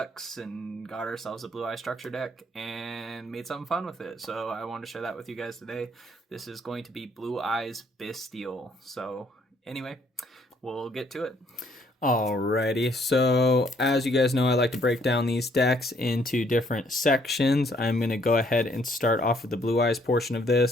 and got ourselves a Blue Eye structure deck and made something fun with it. So I wanted to share that with you guys today. This is going to be Blue Eyes bystial. So anyway, we'll get to it. Alrighty, so as you guys know, I like to break down these decks into different sections. I'm going to go ahead and start off with the Blue Eyes portion of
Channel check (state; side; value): normal; both; correlation 0.67